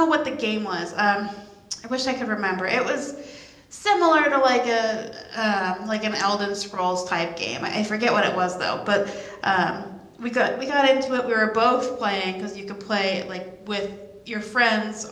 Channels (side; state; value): both; identical; correlation 1.00